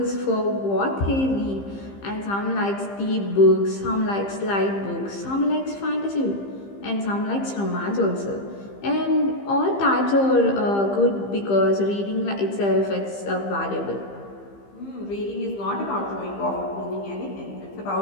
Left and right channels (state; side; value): late; right; 15 ms